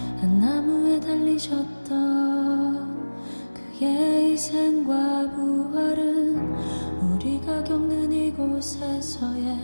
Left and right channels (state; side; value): inverted; both; correlation -1.00